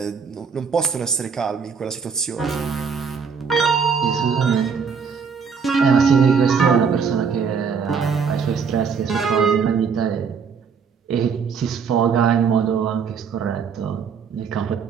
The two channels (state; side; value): quieter; left; 6.1 dB